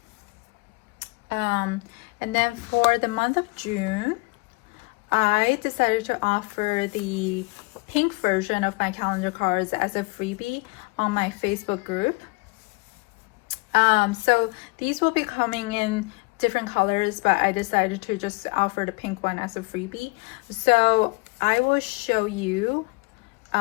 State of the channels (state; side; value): quieter; right; 27.5 dB